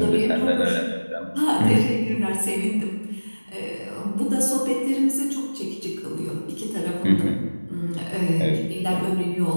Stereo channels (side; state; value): both; inverted; correlation -1.00